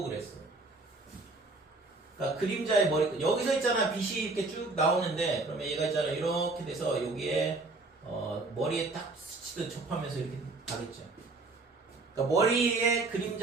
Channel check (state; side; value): quieter; left; 3.4 dB